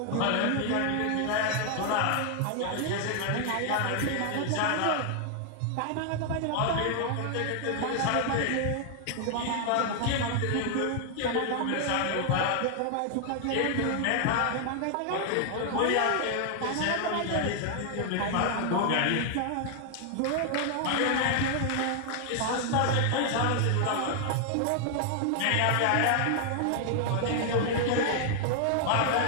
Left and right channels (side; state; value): both; different; correlation 0.00